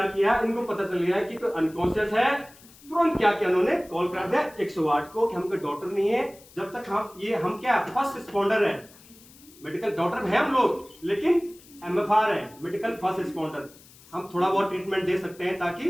किया, इनको पता चल गया कि कोई अनकॉन्शियस है, तुरंत क्या किया उन्होंने, कॉल कर दिया 108 को कि हम कोई डॉक्टर नहीं है। जब तक हम क्या फर्स्ट रिस्पॉन्डर है, मेडिकल डॉक्टर है हम लोग, लेकिन MFR है, मेडिकल फर्स्ट रिस्पॉन्डर। हम थोड़ा बहुत ट्रीटमेंट दे सकते हैं ताकि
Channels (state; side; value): noise; left; hiss, 24 dB below the sound